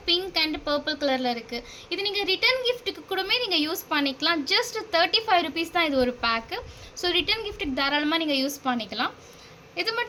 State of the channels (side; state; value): both; identical; correlation 1.00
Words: பிங்க் அண்ட் பர்பிள் கலரில் இருக்குது. இது நீங்கள் ரிட்டன் கிஃப்ட்டுக்கு கூடமே நீங்கள் யூஸ் பண்ணிக்கலாம். ஜஸ்ட் 35 ருபீஸ் தான் இது ஒரு பேக்கு. ஸோ ரிட்டன் கிஃப்ட்டுக்கு தாராளமாக நீங்கள் யூஸ் பண்ணிக்கலாம். இது